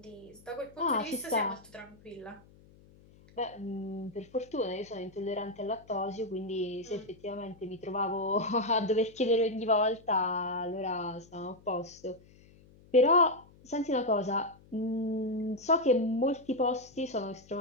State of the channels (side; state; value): left; noise; hum, 25 dB below the sound